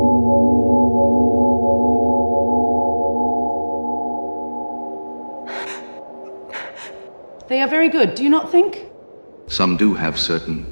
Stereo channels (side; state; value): both; inverted; correlation -1.00